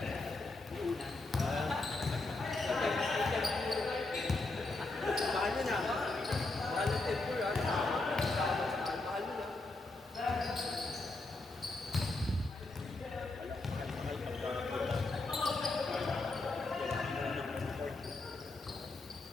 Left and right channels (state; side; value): quieter; right; 3.2 dB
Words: mahal nyo na. Mahal ng tempo yan. Mahal nyo na.